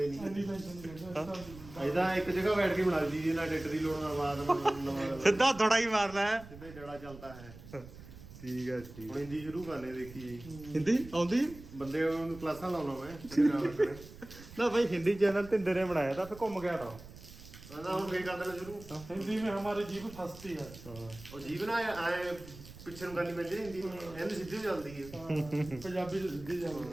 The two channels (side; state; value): right; noise; rumble, 17 dB below the sound